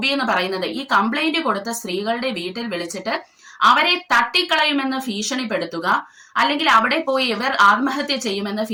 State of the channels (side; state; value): both; identical; correlation 1.00